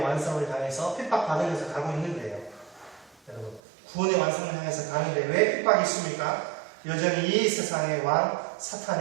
완성을 향해서 핍박받으면서 가고 있는데요. 여러분, 구원의 완성을 향해서 가는데 왜 핍박이 있습니까? 여전히 이 세상의 왕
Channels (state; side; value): drops out; left; at 3.6 s